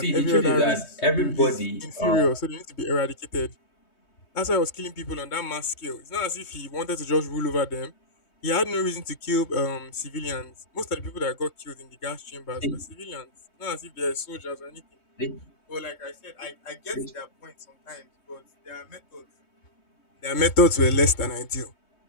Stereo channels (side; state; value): right; late; 3.2 ms